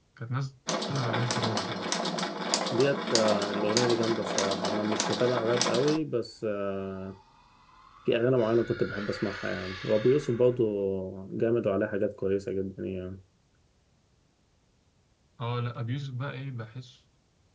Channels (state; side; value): identical; both; correlation 1.00